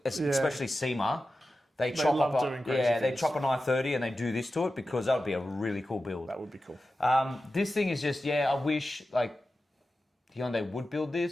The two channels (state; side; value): normal; both; correlation 0.93